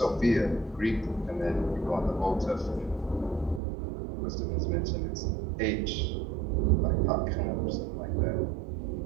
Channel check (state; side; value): drops out; left; at 3.6 s